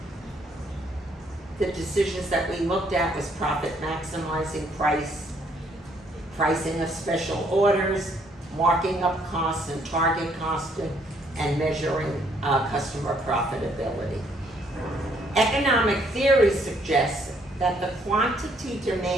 The decisions that we looked at was profit maximizing pricing of special orders, marking up costs and target costing, and measuring customer profitability. Economic theory suggests that the quantity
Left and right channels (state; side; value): normal; both; correlation 0.67